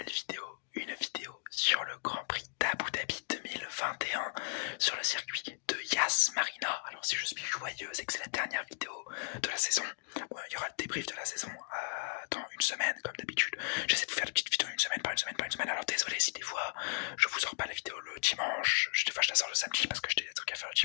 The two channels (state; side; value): silent; right; digital silence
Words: vidéo, sur le Grand Prix d'Abu Dhabi 2021 sur le circuit de Yas Marina. Alors si je suis joyeux, c'est que c'est la dernière vidéo de la saison. Bon, il y aura le débrief de la saison dans une semaine comme d'habitude. J'essaie de vous faire des petites vidéos une semaine par une semaine. Alors désolé si des fois je vous sors pas la vidéo le dimanche, des fois je la sors le samedi parce que j'ai des trucs à faire le